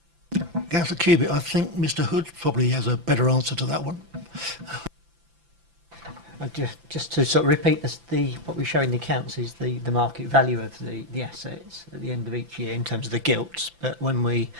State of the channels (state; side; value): late; left; 5.9 ms